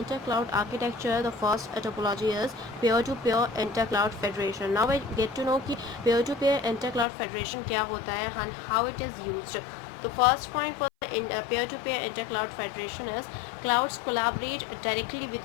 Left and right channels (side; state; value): right; drops out; at 7.1 s